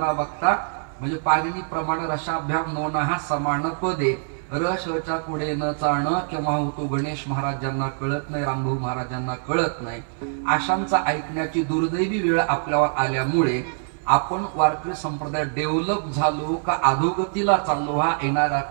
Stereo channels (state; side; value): silent; left; 61 dB below the other